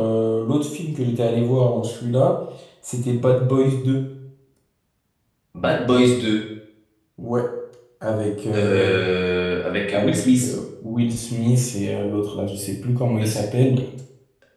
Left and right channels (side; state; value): both; identical; correlation 1.00